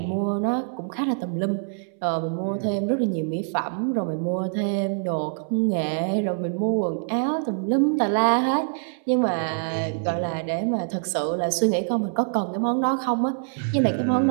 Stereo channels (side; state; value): left; silent; 62 dB below the other